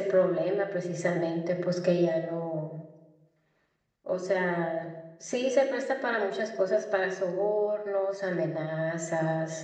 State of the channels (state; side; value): identical; both; correlation 1.00